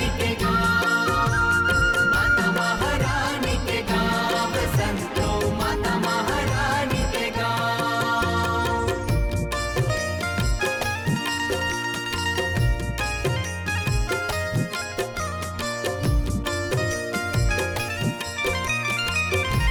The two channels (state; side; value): identical; both; correlation 1.00